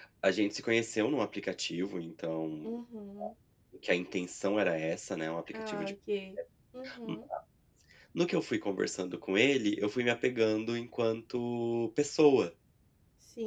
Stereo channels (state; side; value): identical; both; correlation 1.00